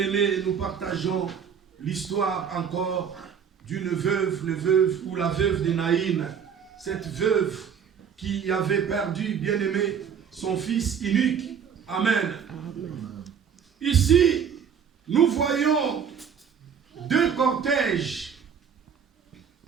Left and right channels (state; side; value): quieter; left; 7.4 dB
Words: nous partageons l'histoire encore d'une veuve, ou la veuve de Naïn. Cette veuve qui avait perdu, bien-aimé, son fils unique. Amen. Ici, nous voyons deux cortèges